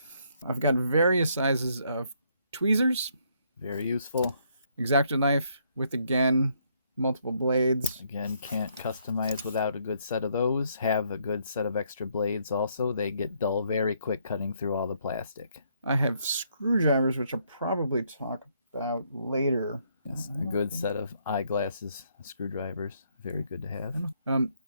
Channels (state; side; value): inverted; both; correlation -0.71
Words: I've got various sizes of tweezers. Very useful. X-Acto knife with, again, multiple blades. Again, can't customize without a good set of those. Have a good set of extra blades also. They get dull very quick cutting through all the plastic. I have screwdrivers, which I'll probably talk about later. Yes, a good set of eyeglasses, screwdrivers. Very good to have.